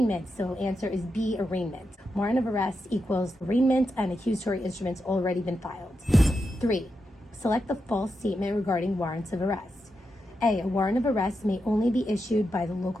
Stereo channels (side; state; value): both; normal; correlation 0.86